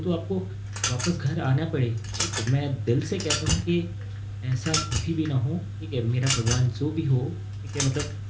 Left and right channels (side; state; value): both; identical; correlation 1.00